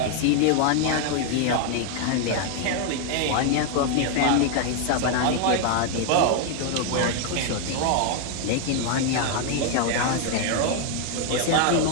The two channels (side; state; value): both; different; correlation 0.00